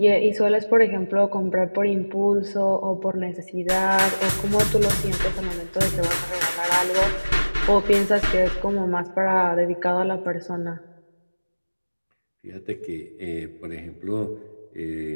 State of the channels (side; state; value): both; inverted; correlation -1.00